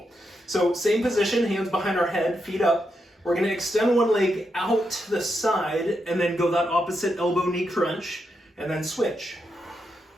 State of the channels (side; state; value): both; normal; correlation 0.83